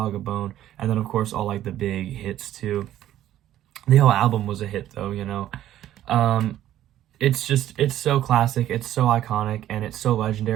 a Bone, and then of course all like the big hits too. The whole album was a hit though, you know. It's so classic, it's so iconic, and it's so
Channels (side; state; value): left; quieter; 12.6 dB